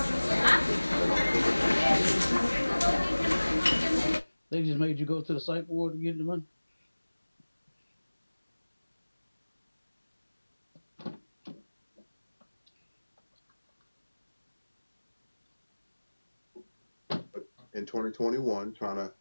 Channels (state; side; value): inverted; both; correlation -1.00